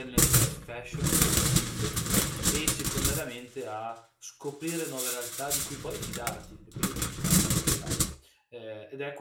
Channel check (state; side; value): identical; both; correlation 1.00